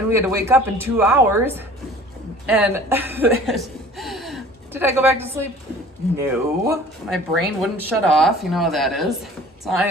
we had to wake up in 2 hours. And did I go back to sleep? No. My brain wouldn't shut off. You know how that is. So I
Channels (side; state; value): both; normal; correlation 0.47